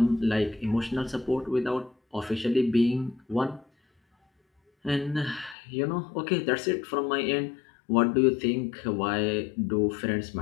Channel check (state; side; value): drops out; right; at 5.6 s